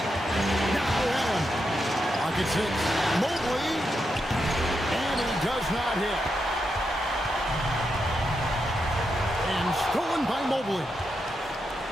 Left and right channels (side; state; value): both; normal; correlation 0.85